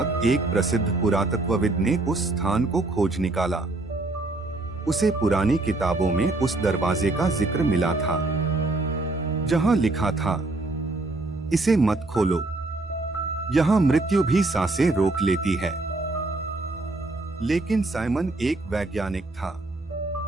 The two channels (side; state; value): left; quieter; 3.0 dB